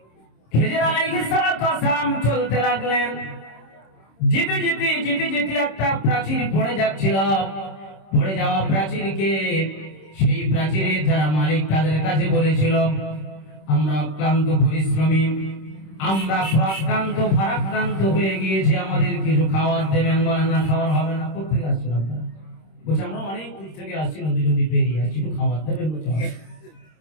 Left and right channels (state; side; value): late; right; 26 ms